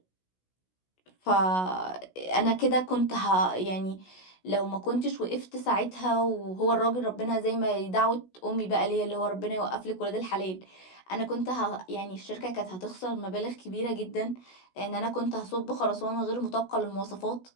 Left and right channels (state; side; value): late; right; 16 ms